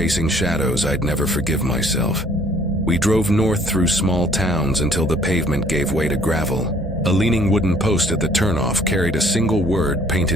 shadows, I'd never forgive myself. We drove north through small towns until the pavement gave way to gravel. A leaning wooden post at the turnoff carried a single word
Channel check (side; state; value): both; normal; correlation 0.59